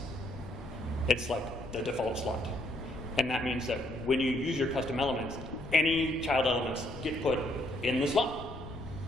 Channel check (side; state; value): left; noise; rumble, 13 dB below the sound